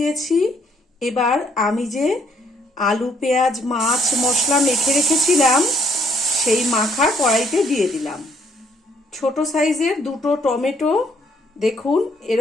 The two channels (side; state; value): both; normal; correlation 0.68